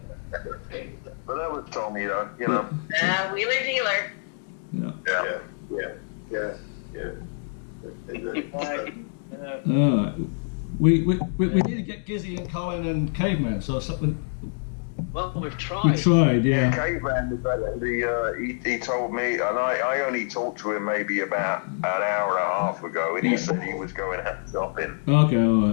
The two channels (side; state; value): right; silent; digital silence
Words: But that was Tommy, though. You know. Wheeler dealer. Yeah. All right. We need to get Gizzy and Colin and Caveman. So something. Well, we've tried. We tried, yeah. Caveman was actually, he told me, and I only talked to him maybe about an hour and a half ago, and he said he was going out shopping. Okay, all